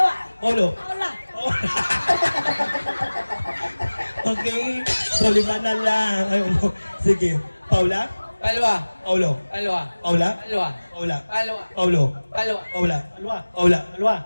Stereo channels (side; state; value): both; inverted; correlation -1.00